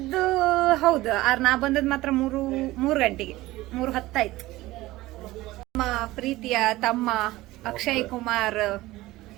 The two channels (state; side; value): quieter; left; 18.1 dB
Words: ಹೌದು, ನಾ ಬಂದದ್ ಮಾತ್ರ 3 ಗಂಟೆಗೆ, 3:10 ಆಯ್ತು. ನಮ್ಮ ಪ್ರೀತಿಯ ತಮ್ಮ ಅಕ್ಷಯ್ ಕುಮಾರ್